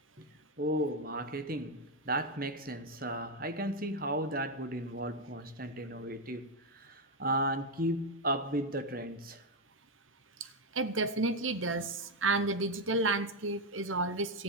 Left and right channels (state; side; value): normal; both; correlation 0.05